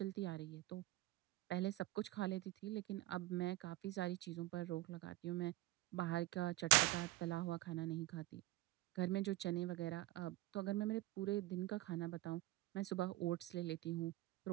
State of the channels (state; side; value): quieter; left; 18.0 dB